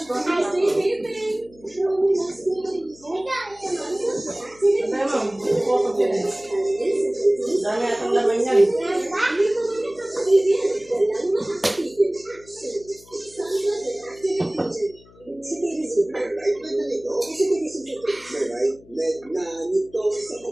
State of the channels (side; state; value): left; noise; hum, 25 dB below the sound